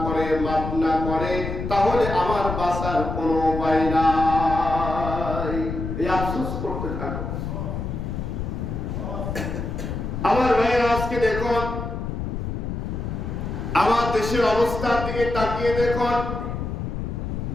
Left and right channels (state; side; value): noise; left; rumble, 4 dB below the sound